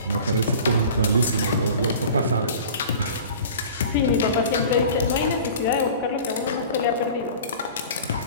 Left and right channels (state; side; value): inverted; both; correlation -0.41